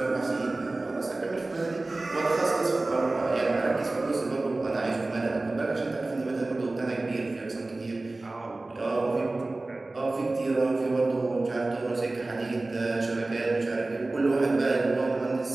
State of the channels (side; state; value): left; quieter; 3.0 dB